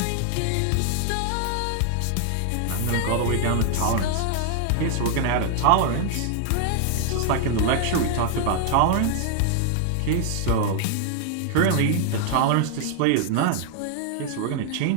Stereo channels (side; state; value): both; different; correlation 0.00